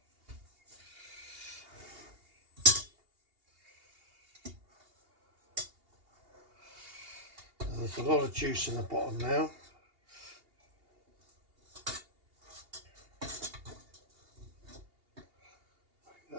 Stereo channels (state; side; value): late; left; 2.8 ms